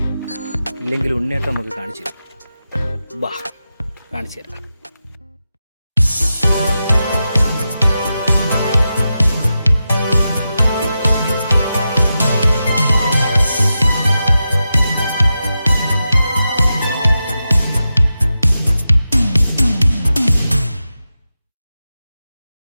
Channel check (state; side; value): inverted; both; correlation -0.90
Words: ഇല്ലെങ്കിൽ ഉണ്ണിയേട്ടൻ നമുക്ക് കാണിച്ചു തരും. ബാ, കാണിച്ചു തരാം.